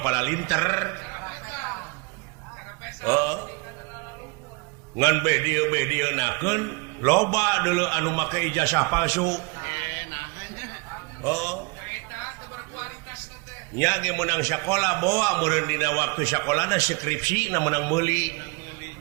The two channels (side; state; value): left; quieter; 29.5 dB